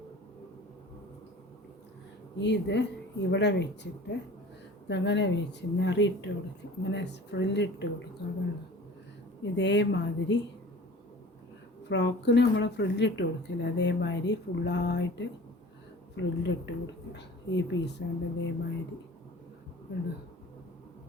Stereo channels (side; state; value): both; normal; correlation 0.43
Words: ഇത് ഇവിടെ വെച്ചിട്ട് ഇതങ്ങനെ വെച്ച് നിറിയിട്ട് കൊടുക്കുക, ഇങ്ങനെ ഫ്രില്ലിട്ട് കൊടുക്കുക. അതാണ് ഇതേമാതിരി ഫ്രോക്കിന് നമ്മൾ ഫ്രില്ലിട്ട് കൊടുക്കില്ല, അതേമാതിരി ഫുള്ളായിട്ട് ഫ്രില്ലിട്ട് കൊടുക്കുക. ഈ പീസ് കൊണ്ട് ഇതേമാതിരി